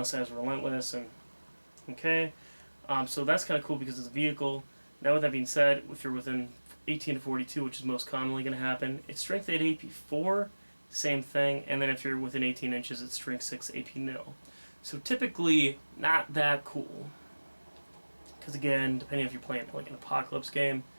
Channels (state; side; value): inverted; both; correlation -1.00